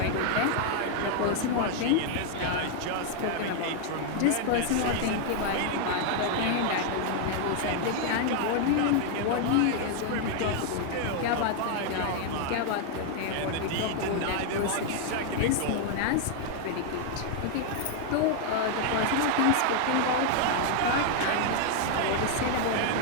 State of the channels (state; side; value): different; both; correlation 0.00